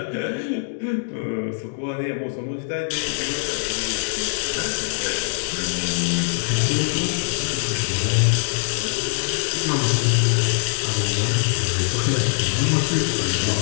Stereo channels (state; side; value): silent; right; digital silence